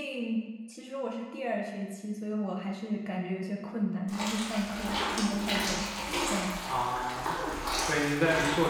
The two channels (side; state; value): both; identical; correlation 1.00